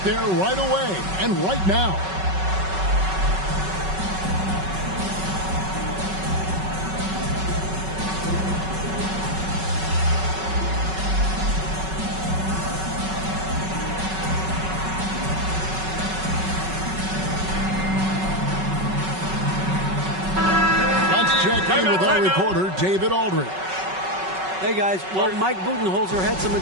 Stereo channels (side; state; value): left; late; 5.3 ms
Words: there right away and right now. Check in with our reporter, David Aldridge. Hey, guys. Well, Mike Budenholzer had some